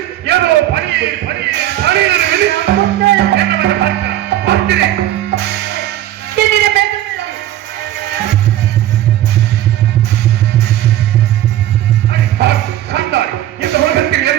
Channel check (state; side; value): quieter; left; 13.2 dB